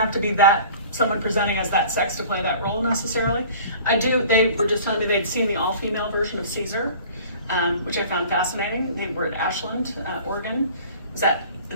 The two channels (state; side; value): inverted; both; correlation -0.45